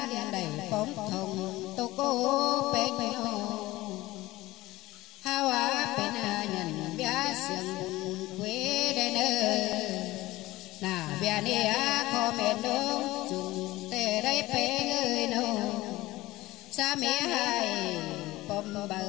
đen đầy bóng thùng tô cô bê nhô hao á bên nhận bia sương bùn quê đây nơ nà bia nè á khó mệt đông chung tê đây bê người nô xa mẹ hai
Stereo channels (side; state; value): right; quieter; 18.4 dB